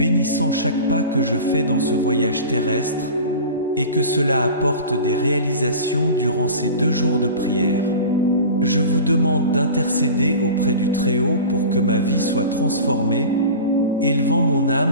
chaque pas que je fais dans ce voyage terrestre, et que cela apporte des réalisations durant ces 2 jours de prière. Je vous demande d'intercéder auprès du Très-Haut pour que ma vie soit transformée, élevant mon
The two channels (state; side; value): inverted; both; correlation -0.35